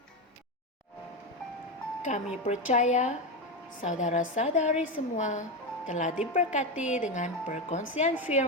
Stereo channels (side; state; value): both; normal; correlation 0.13